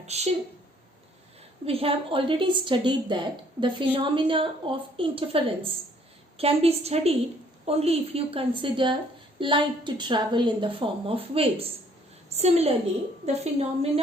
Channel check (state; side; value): normal; both; correlation 0.62